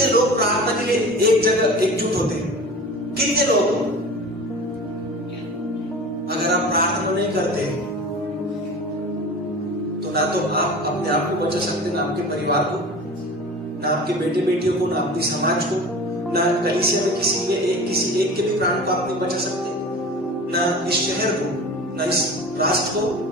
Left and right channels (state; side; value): normal; both; correlation 0.36